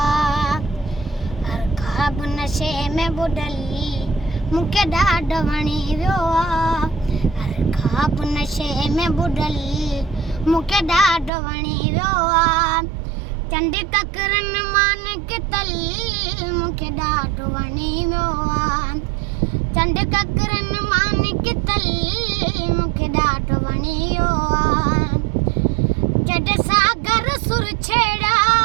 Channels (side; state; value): left; drops out; at 11.3 s